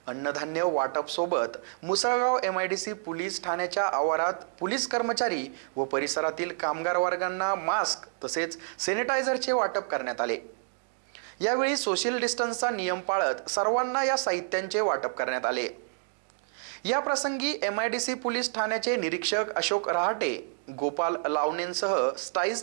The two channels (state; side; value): silent; left; digital silence